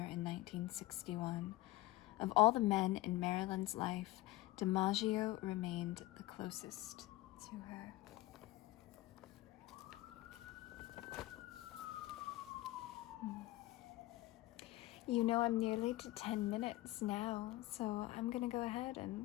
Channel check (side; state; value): right; quieter; 17.8 dB